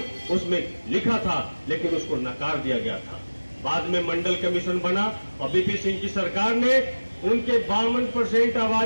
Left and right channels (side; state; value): both; inverted; correlation -1.00